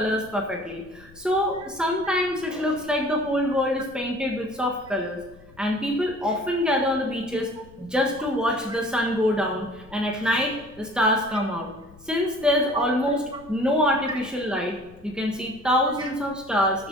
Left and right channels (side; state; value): left; noise; rumble, 24 dB below the sound